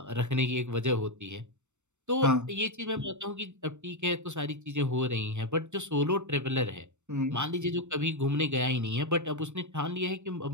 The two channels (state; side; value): late; left; 0.84 ms